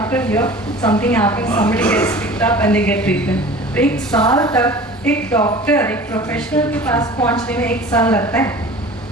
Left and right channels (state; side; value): normal; both; correlation 0.41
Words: a year something happens, somebody gets picked up and they get treatment. एक साल तक एक doctor, एक professional के पास पहुंचने में एक साल लगता है.